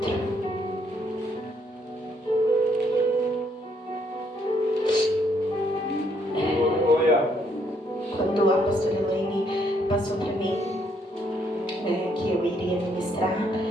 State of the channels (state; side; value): normal; both; correlation 0.71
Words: Quando a pastora Elaine passou para mim que eu iria ministrar,